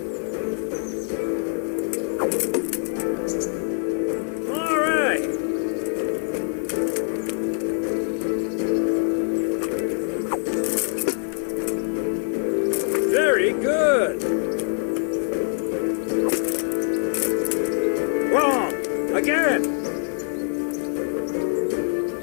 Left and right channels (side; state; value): right; silent; 58 dB below the other